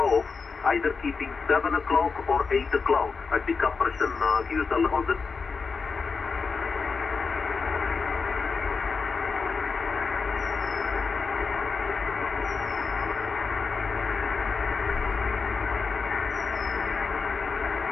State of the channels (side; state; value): right; quieter; 4.9 dB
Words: off either keeping 7 o'clock or 8 o'clock at the compression QSL on the.